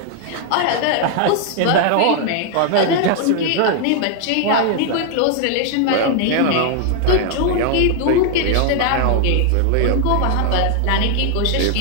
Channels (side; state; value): both; different; correlation 0.00